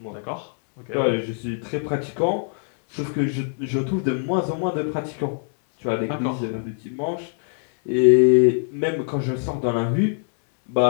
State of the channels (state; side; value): silent; right; 63 dB below the other